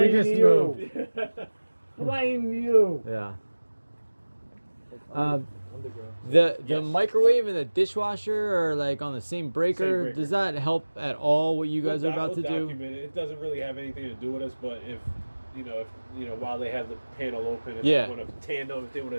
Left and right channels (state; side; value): inverted; both; correlation -1.00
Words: just you. moved. Blame you. Yeah. The microwave and the dishwasher are like on the same breaker. breaker. Does that help at all what you guys are about to do? It doesn't really have anything to do with us, but if while they have the panel open, if Yeah. they want to tandem, if they want